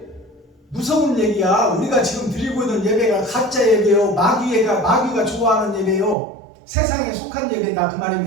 무서운 얘기야. 우리가 지금 드리고 있는 예배가 가짜 예배요, 마귀가 좋아하는 예배요, 세상에 속한 예배다 그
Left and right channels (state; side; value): drops out; left; at 6.2 s